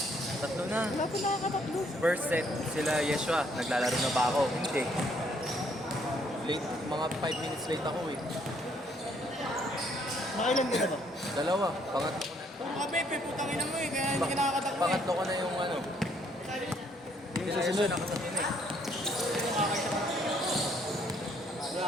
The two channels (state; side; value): normal; both; correlation 0.67